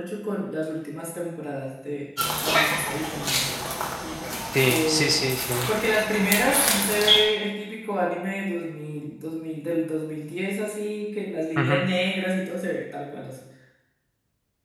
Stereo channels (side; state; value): both; identical; correlation 1.00